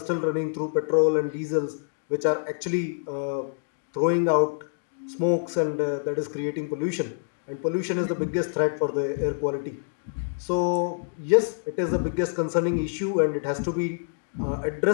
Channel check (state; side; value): silent; right; digital silence